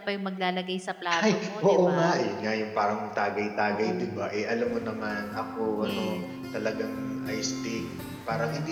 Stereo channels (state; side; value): identical; both; correlation 1.00